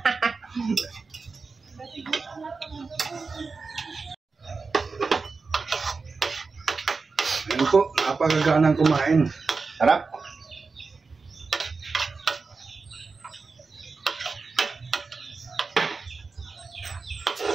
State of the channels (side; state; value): left; quieter; 4.4 dB